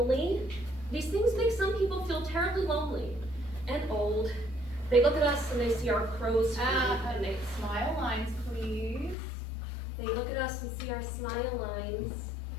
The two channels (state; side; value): drops out; right; at 9.2 s